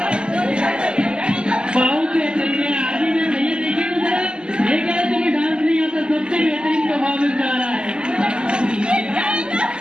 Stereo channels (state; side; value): late; left; 0.049 ms